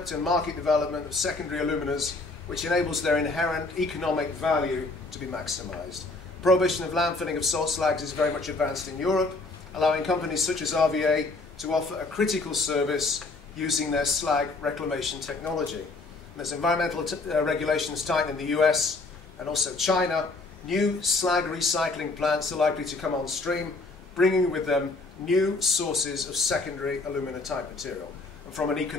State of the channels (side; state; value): right; quieter; 3.4 dB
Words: and market development of secondary aluminas, which enables their inherent economic value to be maximized. Prohibition of landfilling of salt slags is very much advanced in Europe, allowing companies such as RVA to offer a critical service using their slag reclamation technology. And as environmental regulations tighten in the US and also China, new slag recycling plants are likely to come on stream, bringing with them new sources of secondary alumina type material. And from an